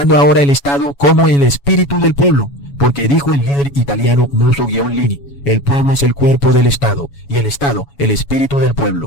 ahora el Estado como el espíritu del pueblo. Porque dijo el líder italiano Mussolini: el pueblo es el cuerpo del Estado y el Estado el espíritu del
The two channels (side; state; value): right; late; 7.1 ms